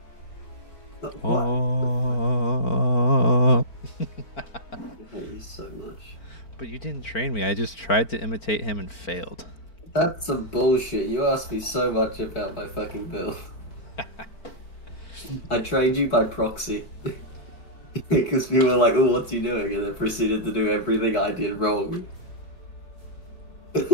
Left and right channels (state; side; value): late; right; 4.4 ms